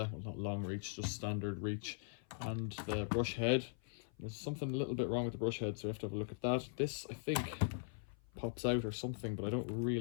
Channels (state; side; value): silent; right; 51 dB below the other